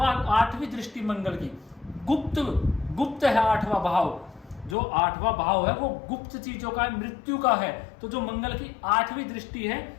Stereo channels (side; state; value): right; drops out; at 4.8 s